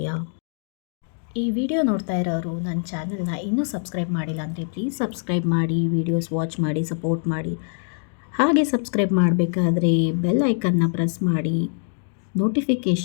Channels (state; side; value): silent; right; 55 dB below the other